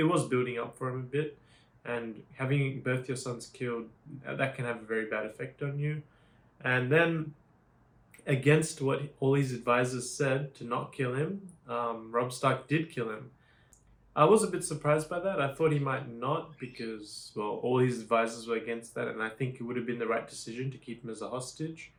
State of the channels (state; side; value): identical; both; correlation 1.00